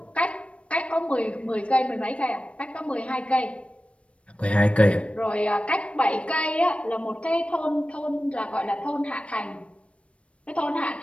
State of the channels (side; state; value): right; late; 0.061 ms